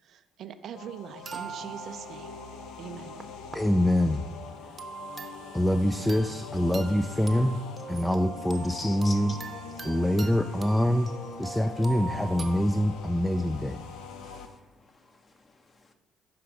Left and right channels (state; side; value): normal; both; correlation 0.93